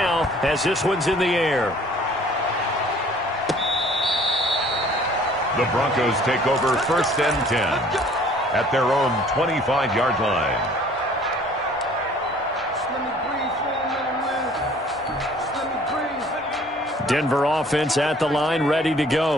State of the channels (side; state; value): both; normal; correlation 0.54